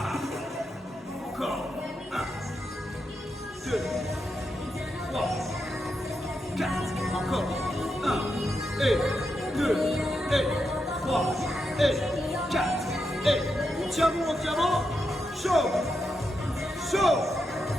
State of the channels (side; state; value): both; normal; correlation 0.85